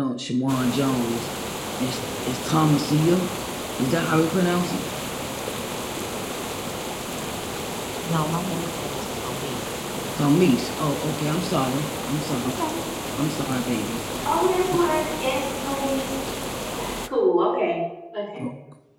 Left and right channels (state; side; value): identical; both; correlation 1.00